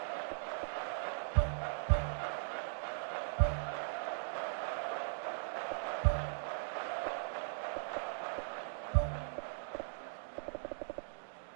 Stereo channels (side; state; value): left; silent; digital silence